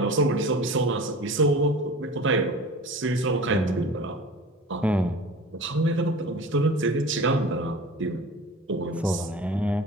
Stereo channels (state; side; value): normal; both; correlation 0.38